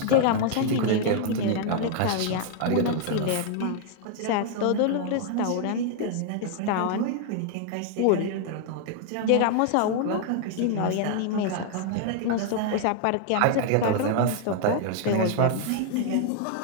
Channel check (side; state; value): both; different; correlation 0.00